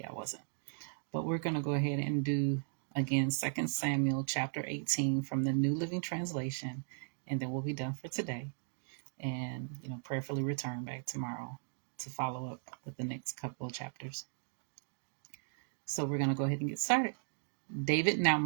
I wasn't. But we're going to go ahead and do again 2 Samuel chapter 18 from the New Living Translation, and then we'll be done for today. And prayerfully return back tomorrow to follow up with the next couple of chapters. So we're going to go ahead and get started. David now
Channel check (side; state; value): left; silent; digital silence